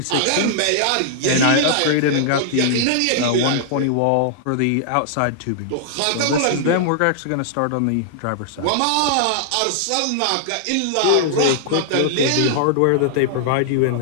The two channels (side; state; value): both; different; correlation -0.01